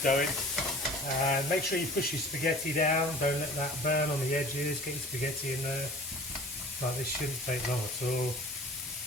going. And make sure you push your spaghetti down, don't let that burn on the edges, get your spaghetti in there. Like, this shouldn't take long at all.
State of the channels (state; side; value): normal; both; correlation 0.44